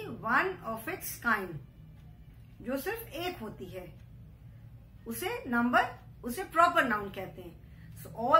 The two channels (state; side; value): identical; both; correlation 1.00